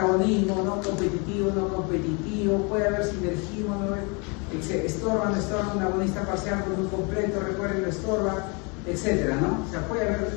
no competitivo, no competitivo, puede haber sinergismo, ¿no? Estorba, no estorba, un agonista parcial con un completo, recuerden, lo estorba, etcétera, ¿no? O sea, puede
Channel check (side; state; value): right; quieter; 31.7 dB